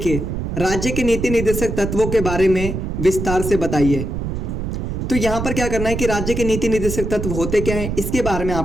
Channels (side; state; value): right; noise; rumble, 4 dB below the sound